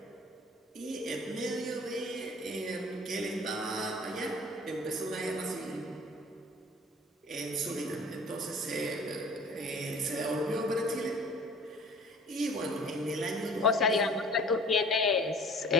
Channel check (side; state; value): both; normal; correlation 0.47